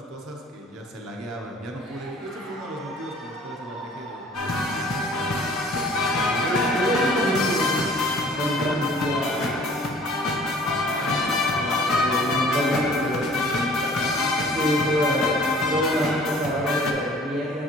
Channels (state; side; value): normal; both; correlation 0.52